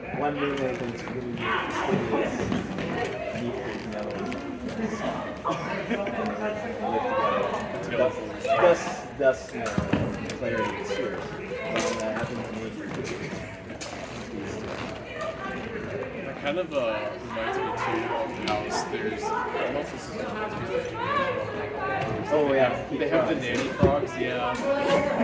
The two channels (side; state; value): both; identical; correlation 1.00